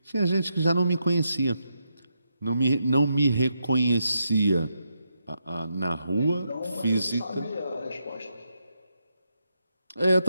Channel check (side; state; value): both; inverted; correlation -0.83